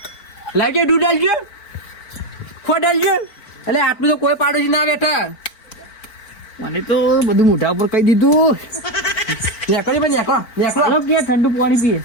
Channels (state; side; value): late; right; 4.5 ms